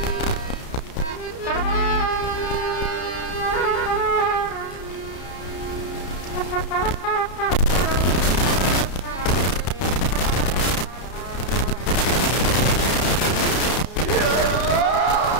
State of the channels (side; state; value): right; late; 32 ms